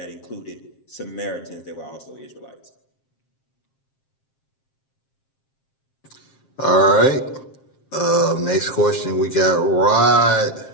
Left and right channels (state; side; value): late; right; 7.5 ms